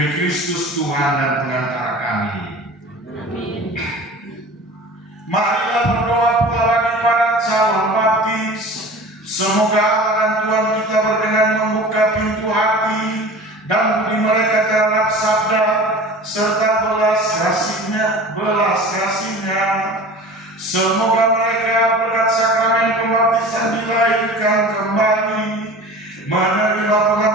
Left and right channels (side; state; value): both; normal; correlation 0.39